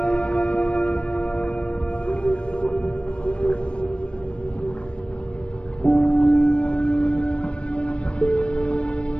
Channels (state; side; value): late; right; 0.058 ms